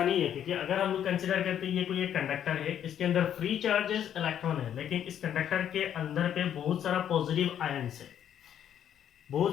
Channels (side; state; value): right; quieter; 9.8 dB